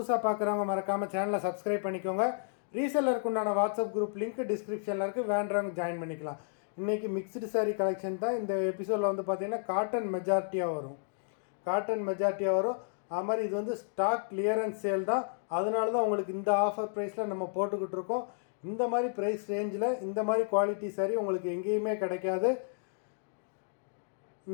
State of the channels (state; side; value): silent; right; digital silence